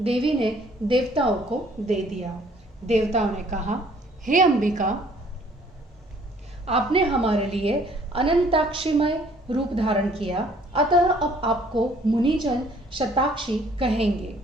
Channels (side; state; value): both; normal; correlation 0.59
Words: देवी ने देवताओं को दे दिया। देवताओं ने कहा, हे अंबिका, आपने हमारे लिए अनंताक्षीमय रूप धारण किया, अतः अब आपको मुनिजन शताक्षी कहेंगे।